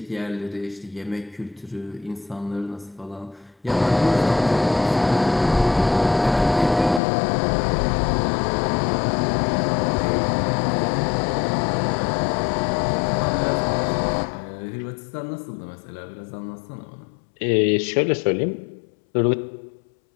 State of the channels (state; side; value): drops out; right; at 7.0 s